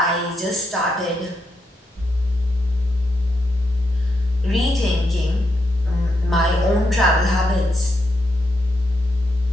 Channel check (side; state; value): both; normal; correlation 0.81